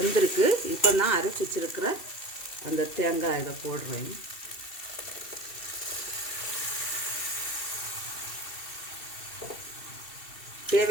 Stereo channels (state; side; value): late; right; 2.7 ms